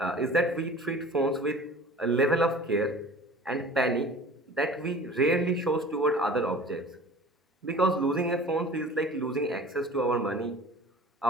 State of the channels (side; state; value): both; normal; correlation 0.43